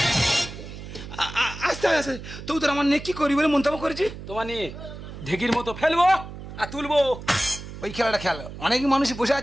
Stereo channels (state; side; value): noise; right; hum, 12 dB below the sound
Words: আস্তে আস্তে তো তোর আমার নিয়ে কি করি বলে মন্তব্য করেছি। তোমার নিয়ে ঢেকির মতো ফেলবো আর তুলবো। ওই খেলাটা খেল, অনেক মানুষ বসে